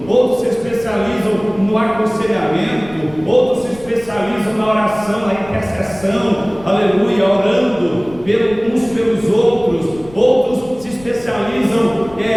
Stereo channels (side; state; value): left; noise; rumble, 21 dB below the sound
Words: outros se especializam no aconselhamento, outros se especializam na oração, na intercessão, aleluia, orando uns pelos outros, outros se especializam